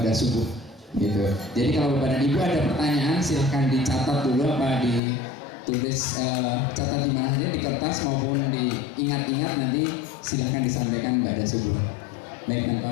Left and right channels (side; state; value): right; drops out; at 5.0 s